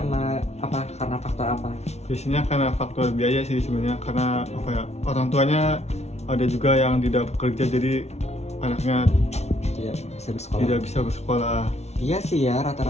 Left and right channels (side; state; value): right; late; 0.31 ms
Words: apa? Karena faktor apa? Biasanya karena faktor biaya sih sebenarnya, karena orang tuanya ada juga yang tidak bekerja, jadi anaknya Tidak bisa bersekolah. tidak bisa bersekolah. Iya sih ya,